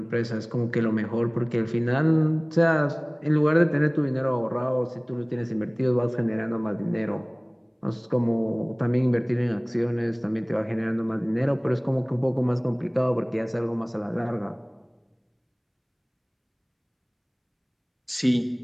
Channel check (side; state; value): both; identical; correlation 1.00